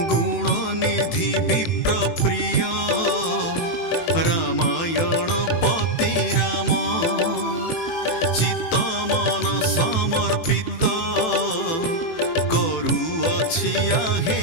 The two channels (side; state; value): right; late; 18 ms